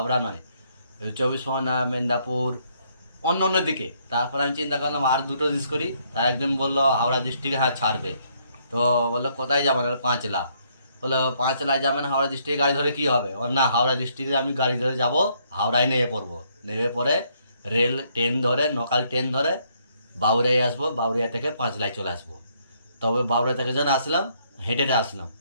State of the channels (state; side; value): inverted; both; correlation -0.70